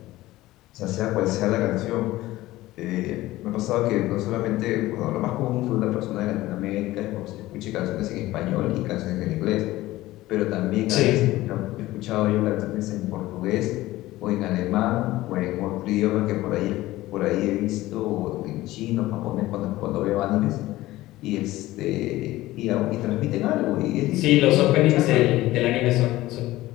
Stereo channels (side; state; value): right; quieter; 17.1 dB